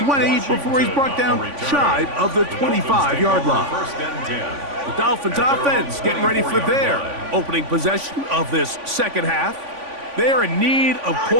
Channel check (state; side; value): late; left; 3.5 ms